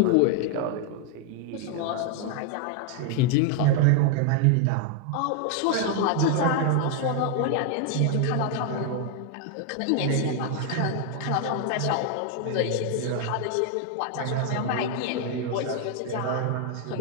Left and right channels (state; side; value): different; both; correlation 0.00